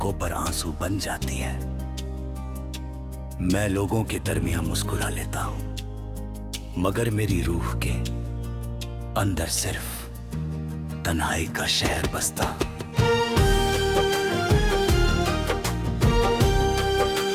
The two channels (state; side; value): identical; both; correlation 1.00